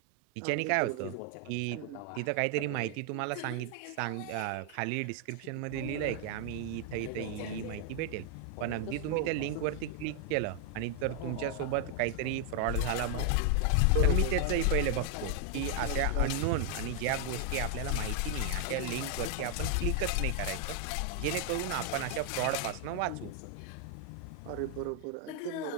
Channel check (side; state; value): both; different; correlation 0.00